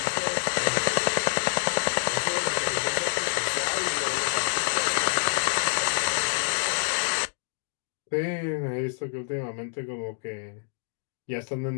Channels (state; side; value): silent; right; digital silence